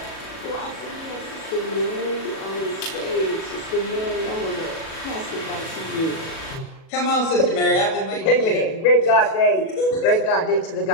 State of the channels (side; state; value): right; late; 37 ms